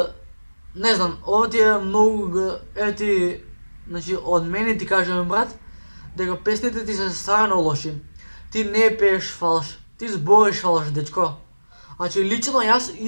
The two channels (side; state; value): both; inverted; correlation -1.00